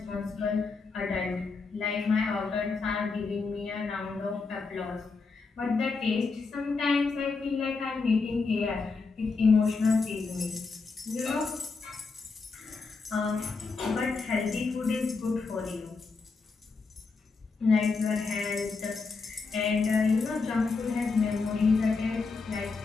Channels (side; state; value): right; quieter; 4.4 dB